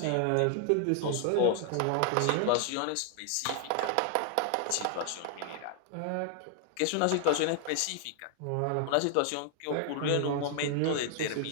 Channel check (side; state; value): both; different; correlation 0.00